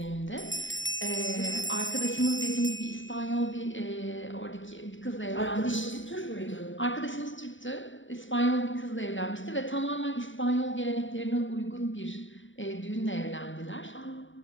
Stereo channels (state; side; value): late; right; 0.56 ms